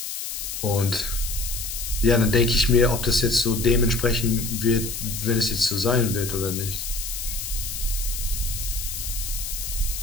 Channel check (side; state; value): left; noise; hiss, 6 dB below the sound